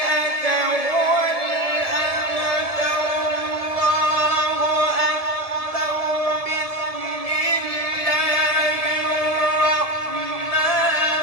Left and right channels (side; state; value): right; late; 1.7 ms